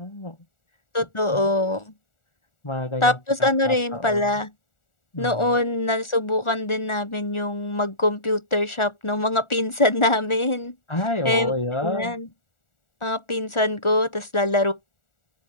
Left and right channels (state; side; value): late; right; 1.4 ms